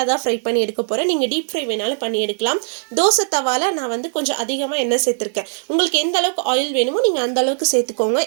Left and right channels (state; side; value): silent; left; digital silence